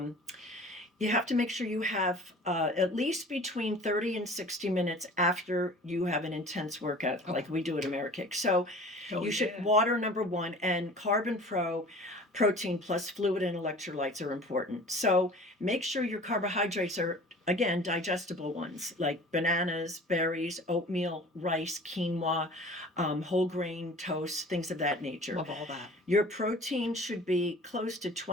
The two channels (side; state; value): both; normal; correlation 0.44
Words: you have to make sure you have at least between 30 and 60 minutes after you have an intense workout, like we do at AmeriKick. So you should water, number one, and protein plus fluid and electrolytes are important. So make sure your carbohydrates are, again, digestible ones like bananas, berries, oatmeal, rice, quinoa, whole grain toast, things of that nature. Love all that. Your protein should be close to